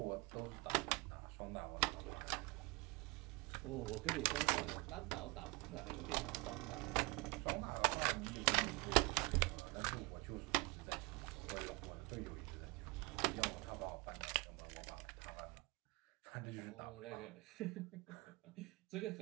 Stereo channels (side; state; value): left; quieter; 26.0 dB